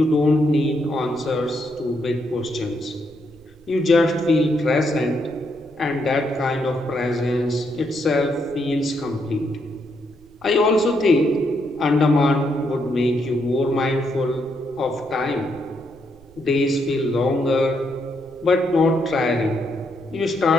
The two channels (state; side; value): noise; right; rumble, 25 dB below the sound